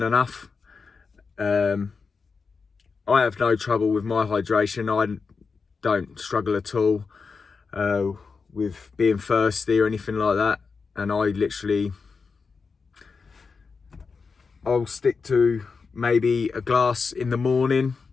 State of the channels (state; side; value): quieter; right; 4.9 dB